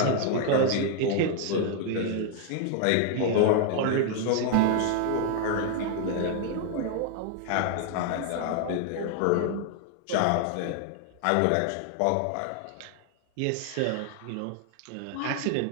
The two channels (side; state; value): both; different; correlation 0.00